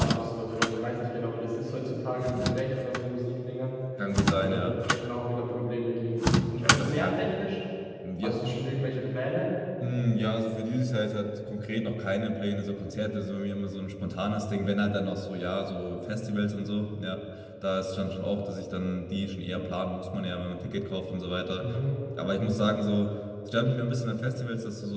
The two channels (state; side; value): identical; both; correlation 1.00